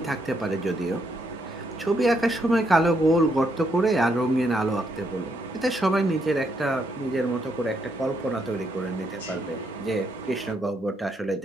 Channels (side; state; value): both; normal; correlation 0.76